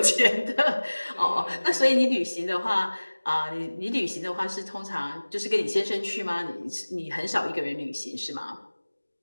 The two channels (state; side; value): inverted; both; correlation -1.00